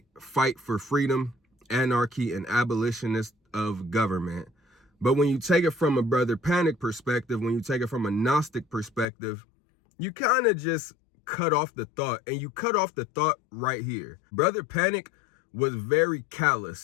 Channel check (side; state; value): right; drops out; at 9.1 s